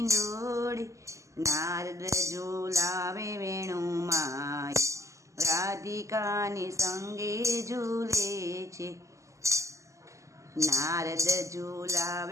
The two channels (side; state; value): left; late; 0.15 ms